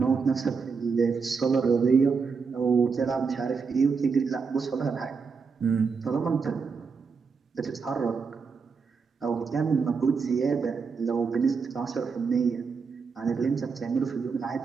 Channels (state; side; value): quieter; left; 5.3 dB